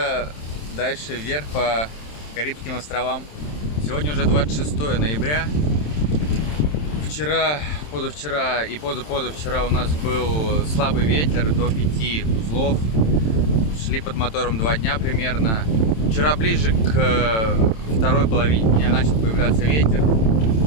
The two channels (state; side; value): late; right; 27 ms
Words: дальше вверх по Карибским островам. Сегодня уже 26 ноября. Вчера, позавчера и позапозавчера у нас был слабый ветер до 5 узлов. Шли под мотором 2 дня примерно. Вчера ближе к второй половине дня начал появляться ветер.